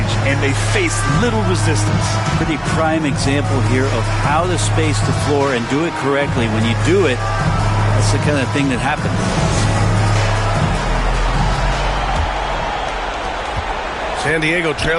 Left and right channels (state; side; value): identical; both; correlation 1.00